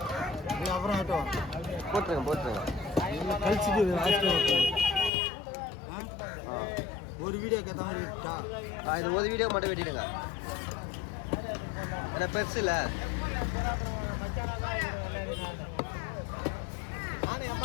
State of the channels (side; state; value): right; drops out; at 5.1 s